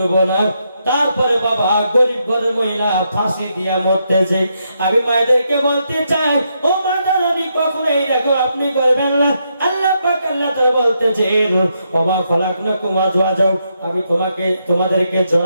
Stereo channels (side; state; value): both; inverted; correlation -0.80